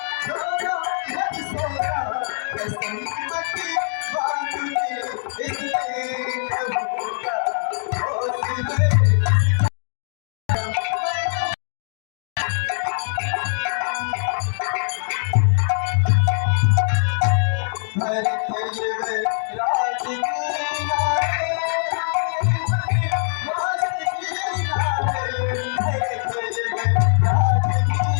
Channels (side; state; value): right; silent; digital silence